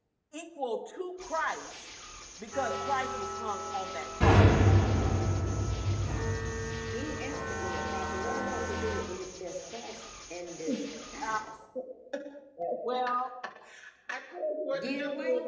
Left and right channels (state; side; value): identical; both; correlation 1.00